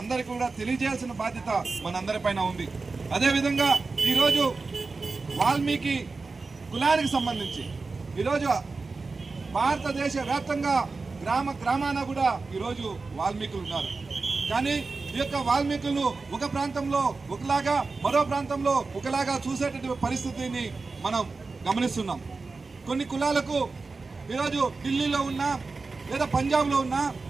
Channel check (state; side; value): quieter; left; 4.0 dB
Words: కూడా తెలియజేయాల్సిన బాధ్యత మనందరిపైన ఉంది. అదేవిధంగా ఈరోజు వాల్మీకి కులానికి సంబంధించి ఈరోజు భారతదేశ వ్యాప్తంగా గ్రామాన కూడా ఈరోజు వాల్మీకులు ఉన్నారు. కానీ ఈ యొక్క వాల్మీకులను ఒక ప్రాంతంలో ఒకలాగా, మరో ప్రాంతంలో ఒకలాగా చూసేటటువంటి పరిస్థితిని మనం గమనిస్తున్నాం. కొన్ని కులాలకు ఈరోజు ఢిల్లీలో ఉన్నా, లేదా పంజాబ్లో ఉన్నా,